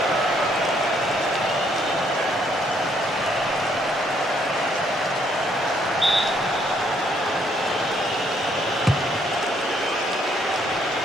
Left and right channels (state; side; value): normal; both; correlation 0.69